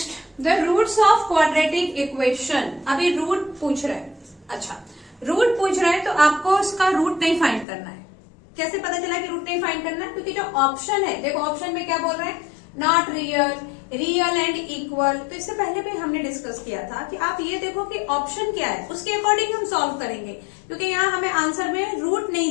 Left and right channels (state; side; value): drops out; right; at 7.7 s